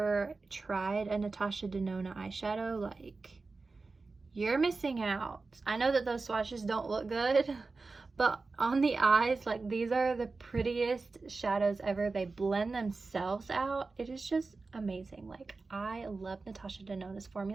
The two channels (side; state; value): left; quieter; 3.9 dB